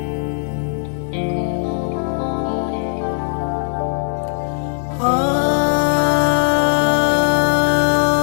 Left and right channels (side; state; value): right; silent; digital silence